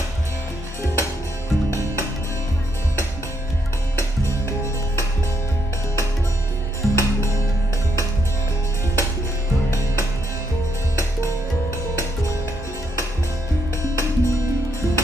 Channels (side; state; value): both; normal; correlation 0.76